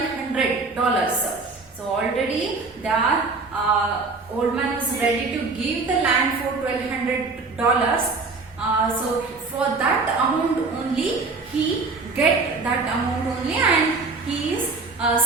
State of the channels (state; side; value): quieter; left; 4.0 dB